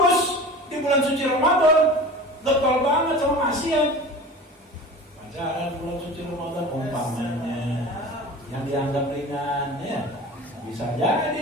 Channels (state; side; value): normal; both; correlation 0.36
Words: di bulan suci Ramadan, getol banget sama maksiat. Jalan bulan suci Ramadan umpamanya yang dianggap ringan, ya bisa